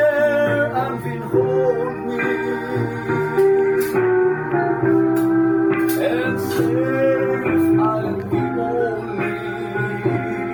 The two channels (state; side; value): identical; both; correlation 1.00